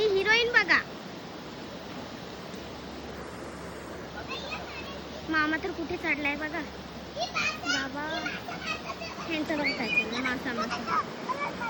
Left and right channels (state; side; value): identical; both; correlation 1.00